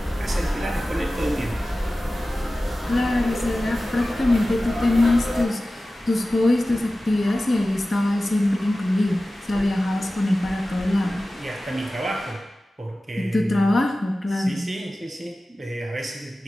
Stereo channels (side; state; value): both; normal; correlation 0.96